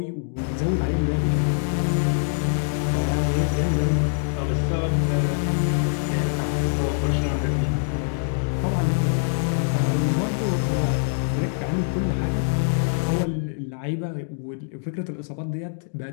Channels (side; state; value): right; silent; digital silence